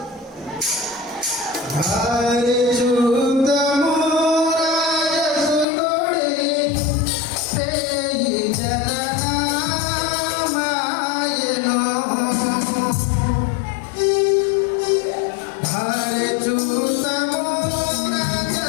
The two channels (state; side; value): drops out; right; at 5.7 s